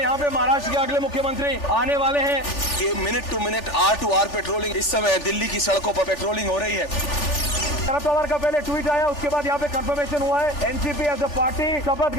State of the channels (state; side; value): late; right; 3.4 ms